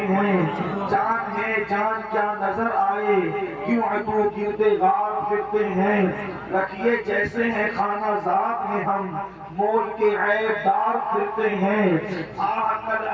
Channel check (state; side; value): identical; both; correlation 1.00